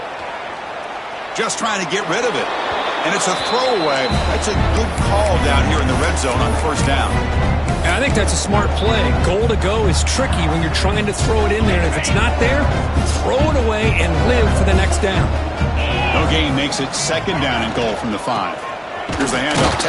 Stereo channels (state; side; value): identical; both; correlation 1.00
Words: Just trying to get rid of it. And it's a throwaway. That's a good call down here in the red zone on first down. And I think that's a smart play. Goal to go is tricky when you're trying to throw it in there. And if it's not there, throw it away and live for the next down. No gain makes it 2nd down and goal from the 5. Here's the handoff,